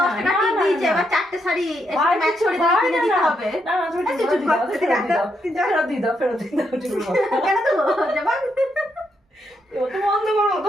10 টাকা না, টিপ না, দিয়েছে, না। এবার 4টে শাড়ি ভাই ম্যাচ কিছু করে ভাই কিনে না, দিতে না। হবে। না না তুমি তুই ফেরত চুপ দিয়ে দাও, কর, তুই ফেরত দিয়ে রাখ, দাও, তুই যা। ফেরত দিয়ে দাও, ফেরত দিয়ে দাও, ঠিক আছে। কেন তো যাবা? ও তো বন্ধ করো,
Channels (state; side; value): normal; both; correlation 0.79